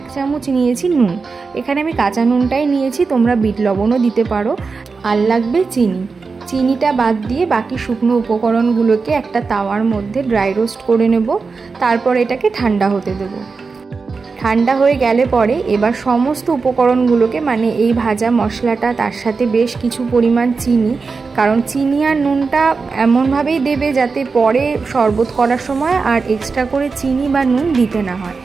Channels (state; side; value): quieter; left; 4.6 dB